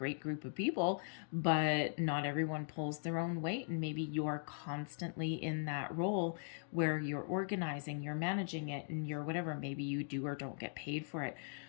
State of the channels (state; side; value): silent; right; digital silence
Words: group of people, but not everyone pulls their own weight, and maybe you're constantly in that role where you're organizing, you're managing it, and you're whatever, maybe you do or don't get paid for it.